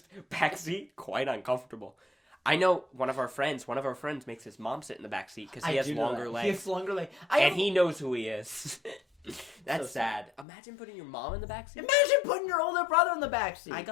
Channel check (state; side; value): drops out; right; at 10.5 s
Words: backseat, quite uncomfortable. I know one of our friends makes his mom sit in the backseat because he has longer legs. He has longer legs. And he knows who he is. That's so sad. Imagine putting your mom in the backseat. Imagine putting your older brother in the backseat. I